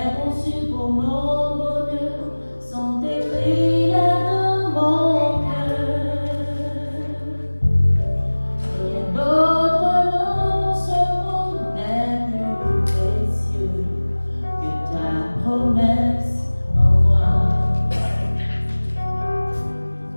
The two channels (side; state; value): both; inverted; correlation -1.00